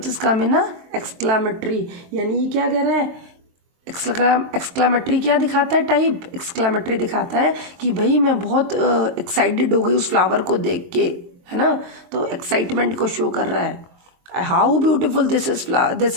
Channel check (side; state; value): left; late; 23 ms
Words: is come in exclamatory, यानी ये क्या कह रहा है, एक्सक्लामेटरी क्या दिखाता है, टाइप. एक्सक्लामेटरी दिखाता है कि भाई मैं बहुत एक्साइटेड हो गई उस फ्लावर को देख के, है ना. तो एक्साइटमेंट को शो कर रहा है. How beautiful this